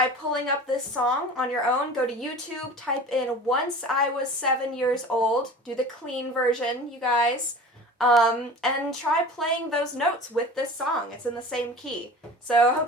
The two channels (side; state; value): both; normal; correlation 0.38